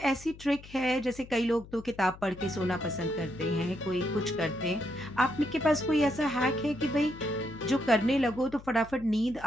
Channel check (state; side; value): noise; left; hum, 18 dB below the sound